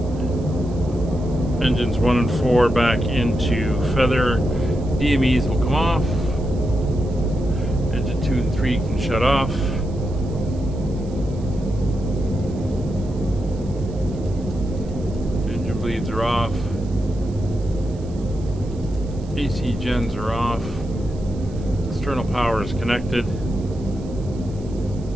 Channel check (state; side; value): noise; right; hiss, 26 dB below the sound